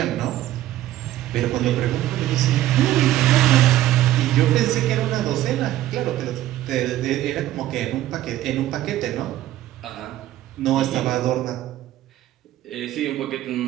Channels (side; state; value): left; quieter; 14.0 dB